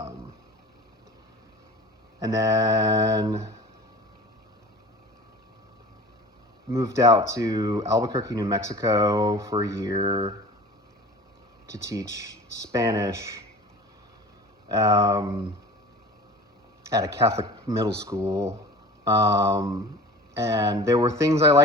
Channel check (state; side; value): normal; both; correlation 0.40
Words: And then moved out to Albuquerque, New Mexico for a year to teach Spanish at a Catholic middle school. And there were things I